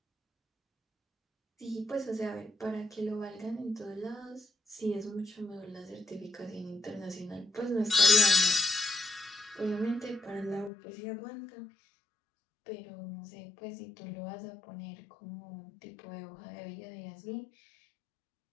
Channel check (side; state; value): right; drops out; at 10.7 s